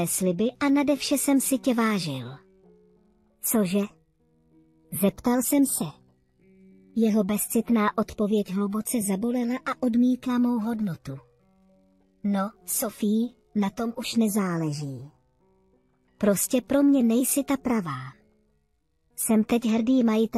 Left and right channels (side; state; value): both; identical; correlation 1.00